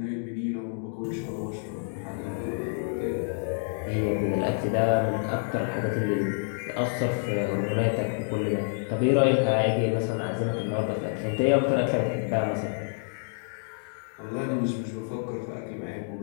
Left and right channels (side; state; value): right; silent; digital silence